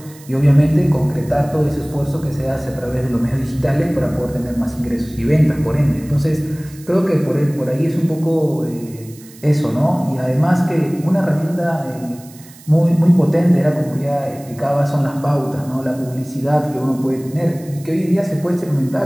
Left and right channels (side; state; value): right; noise; hiss, 22 dB below the sound